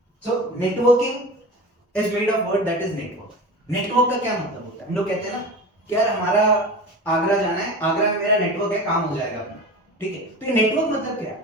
So networking is made of word that is network. Network का क्या मतलब होता है? हम लोग कहते हैं ना कि यार हमारा आगरा जाना है, आगरा में मेरा नेटवर्क है, काम हो जाएगा अपना। ठीक है, तो ये नेटवर्क मतलब क्या है?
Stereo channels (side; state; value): both; normal; correlation 0.32